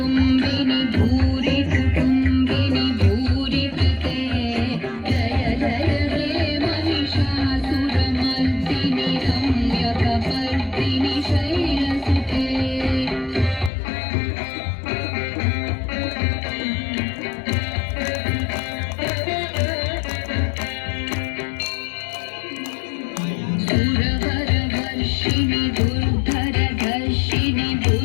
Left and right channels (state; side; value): drops out; right; at 13.7 s